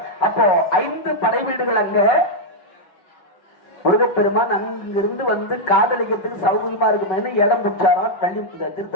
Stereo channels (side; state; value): right; late; 5.3 ms